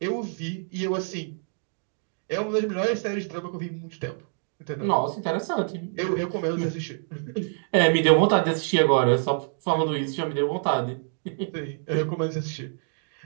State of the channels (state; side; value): silent; left; 61 dB below the other